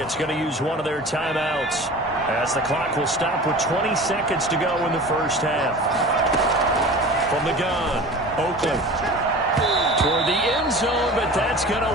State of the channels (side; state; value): both; normal; correlation 0.38